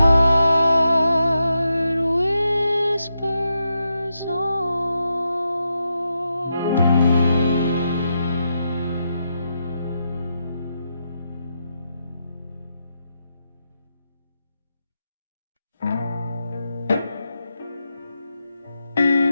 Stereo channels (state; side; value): inverted; both; correlation -0.85